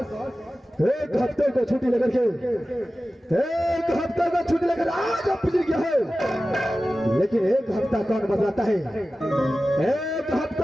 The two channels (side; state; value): both; normal; correlation 0.95